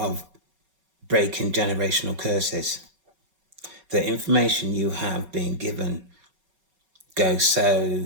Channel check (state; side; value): late; left; 5.3 ms